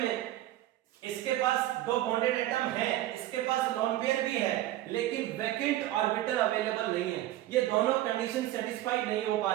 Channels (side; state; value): left; quieter; 14.6 dB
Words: इसके पास दो बॉन्डेड एटम है, इसके पास लोन पेयर भी है, लेकिन वैकेंट ऑर्बिटल अवेलेबल नहीं है। ये दोनों कंडीशन सेटिस्फाइड नहीं हो पा